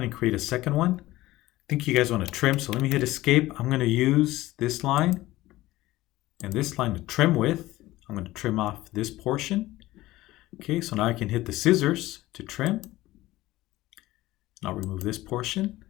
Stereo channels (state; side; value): quieter; right; 17.3 dB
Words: and create a second one. I think you guys want to trim, so let me hit escape. I'm going to use this line and this line to trim with. I'm going to trim off this portion. Okay, so now I can hit the scissors to trim. And I'll remove this portion,